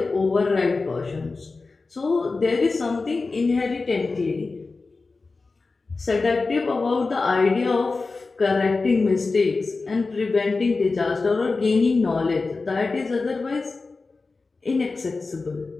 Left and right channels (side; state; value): right; quieter; 3.9 dB